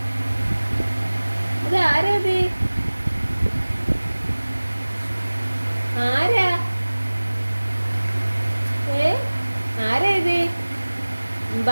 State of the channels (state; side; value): inverted; both; correlation -1.00